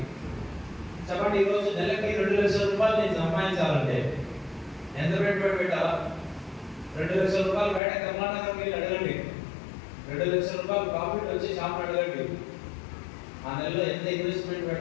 చెప్పండి, ఈరోజు నెలకి ₹2,00,000 నేను సంపాదించాలంటే ఎంత పెట్టుబడి పెట్టాలా? ₹2,00,000 బయట కర్ణాటకకి వెళ్ళి అడగండి, ₹2,00,000 ప్రాఫిట్ వచ్చి షాప్ అడగండి. ఆ నెలలో ఎంత ఇన్వెస్ట్మెంట్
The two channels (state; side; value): drops out; right; at 7.8 s